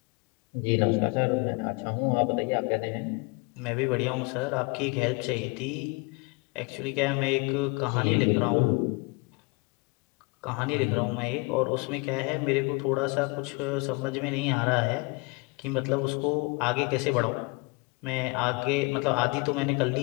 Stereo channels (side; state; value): right; quieter; 28.6 dB